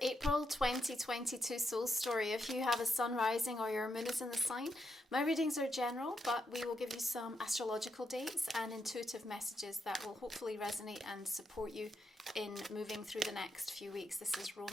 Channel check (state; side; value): normal; both; correlation 0.82